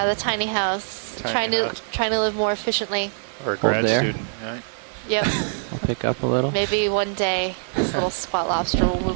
the tiny house. Tiny house. Trying to live more efficiently. Or a grad there. student, right? Yep. Pick up a little. Maybe one day this little squat lobster will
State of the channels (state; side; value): silent; left; digital silence